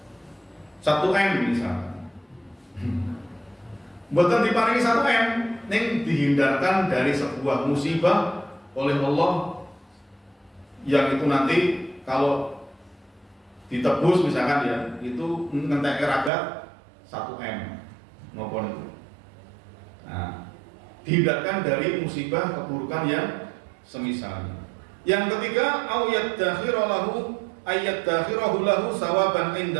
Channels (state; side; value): drops out; left; at 16.3 s